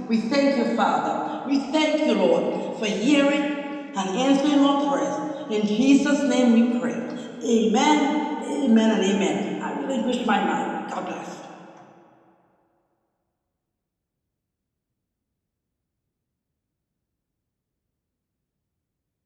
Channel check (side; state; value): both; identical; correlation 1.00